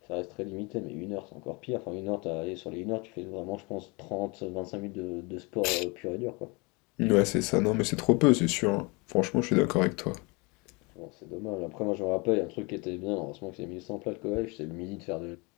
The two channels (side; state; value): right; quieter; 28.3 dB